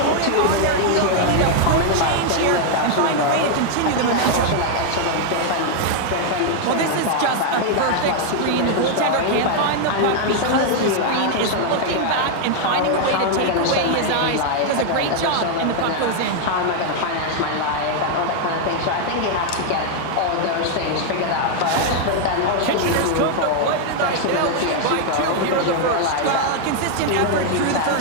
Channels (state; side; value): different; both; correlation 0.00